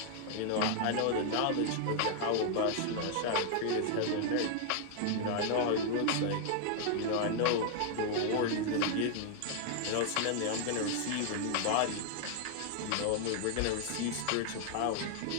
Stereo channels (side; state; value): both; different; correlation 0.00